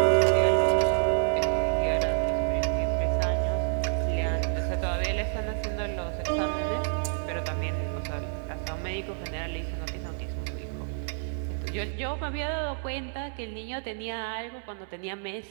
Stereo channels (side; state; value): left; silent; digital silence